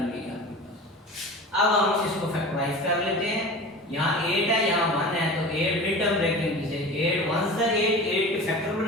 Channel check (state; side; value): normal; both; correlation 0.35